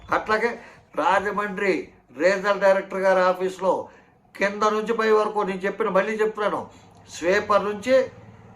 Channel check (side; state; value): both; identical; correlation 1.00